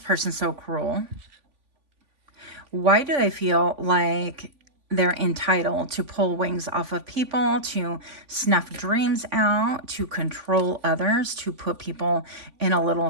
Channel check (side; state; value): left; late; 3.5 ms